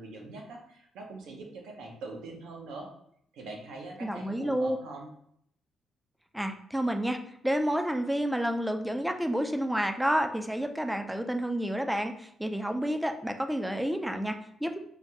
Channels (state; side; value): normal; both; correlation 0.94